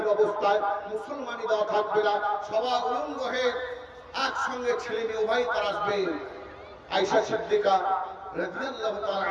অবস্থায়, মুসলমানি দেওয়া থাকবে না, সবাই উলঙ্গ হয়ে একসঙ্গে ছেলে মেয়ে উভয় তারা আসবে। আয়েশা সিদ্দিকা রাদিয়াল্লাহু তাআলা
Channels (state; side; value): identical; both; correlation 1.00